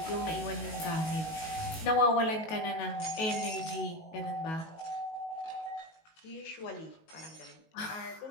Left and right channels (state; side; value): late; right; 19 ms